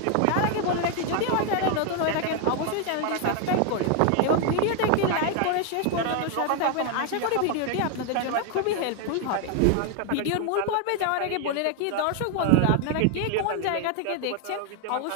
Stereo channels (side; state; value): both; different; correlation 0.01